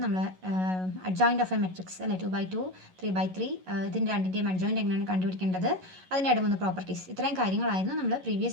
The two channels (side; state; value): left; late; 11 ms